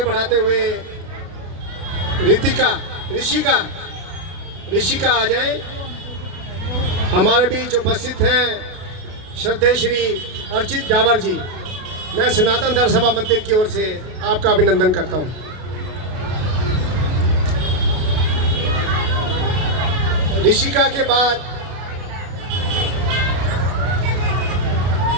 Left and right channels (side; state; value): left; late; 32 ms